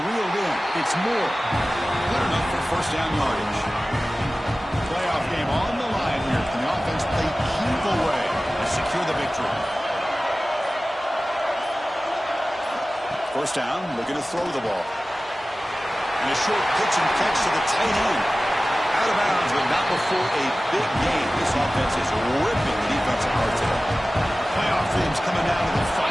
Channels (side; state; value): both; normal; correlation 0.97